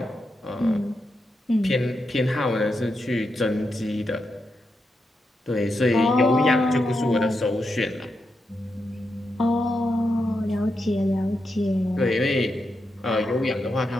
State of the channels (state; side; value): normal; both; correlation 0.85